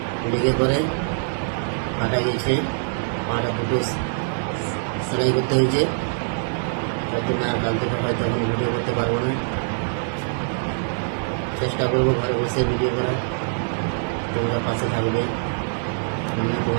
লেগে পরে কাটা গেছে, পাটা দুটো সেলাই করতে হয়েছে। তার জন্য আর কাল থেকে হয়তো এখন ভিডিও করতে পারবো না। চেষ্টা করবো ঘরে বসে ভিডিও করা। তোমরা পাশে থাকবে, আমিও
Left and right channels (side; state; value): left; silent; digital silence